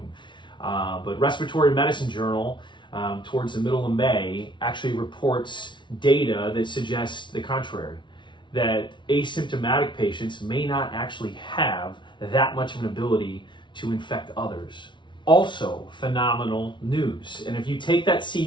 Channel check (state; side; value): late; right; 0.23 ms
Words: But Respiratory Medicine Journal, towards the middle of May, actually reports data that suggests the contrary, that asymptomatic patients may not actually have that much of an ability to infect others. Also phenomenal news. And if you take that